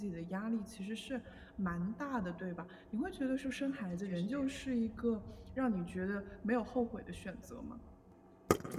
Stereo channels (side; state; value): both; identical; correlation 1.00